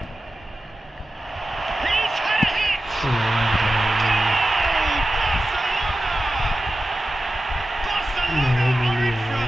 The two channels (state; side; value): normal; both; correlation 0.93